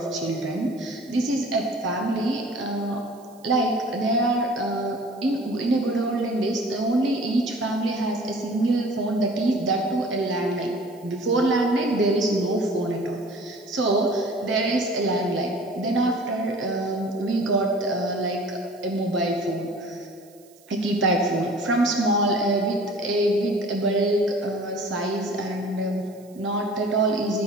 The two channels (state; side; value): noise; right; hiss, 28 dB below the sound